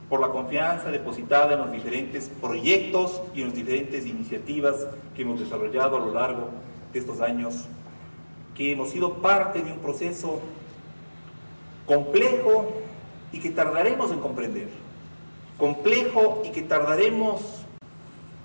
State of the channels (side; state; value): both; inverted; correlation -1.00